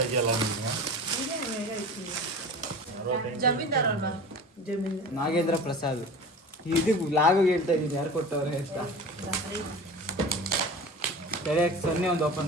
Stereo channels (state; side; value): normal; both; correlation 0.35